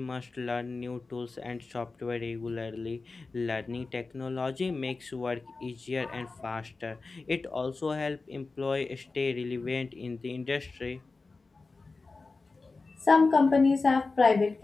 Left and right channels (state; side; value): quieter; right; 3.9 dB